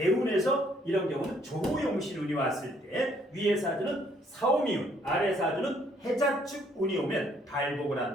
이런 경우는 조용신운이 왔을 때 위에 사주는 사오미운, 아래 사주는 해자축운이 오면 발복을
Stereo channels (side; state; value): both; normal; correlation 0.66